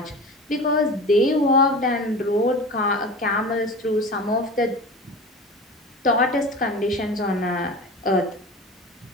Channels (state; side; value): normal; both; correlation 0.34